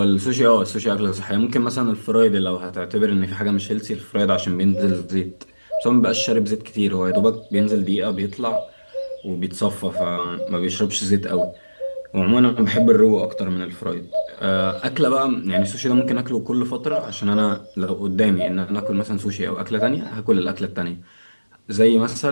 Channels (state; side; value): inverted; both; correlation -1.00